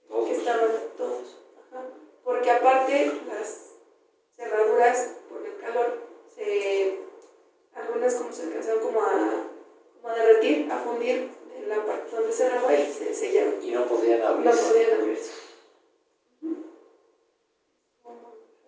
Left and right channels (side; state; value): both; identical; correlation 1.00